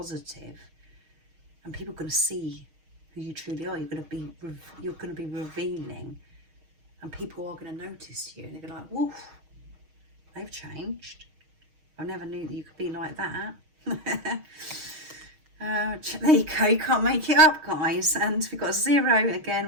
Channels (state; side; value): late; left; 6.4 ms